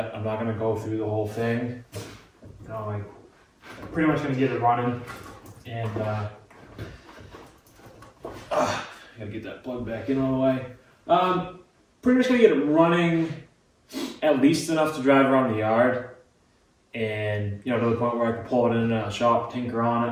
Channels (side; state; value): both; identical; correlation 1.00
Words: I'm not gonna go through the whole thing. I'm pretty much gonna get it running, and gotta get that plug back in all the way. Pretty much gonna get it running, at least enough to drive around the yard, and to the point where I can pull it in a shop, tinker on